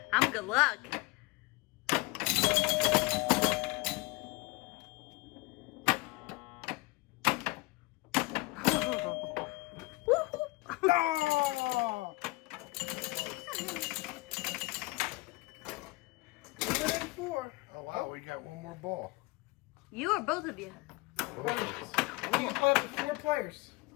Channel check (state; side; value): quieter; right; 23.8 dB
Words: I'm good luck. Oh! Within 4. Oh wow, we got one more ball. You or both of you? Both of us. You can play up to 4 players.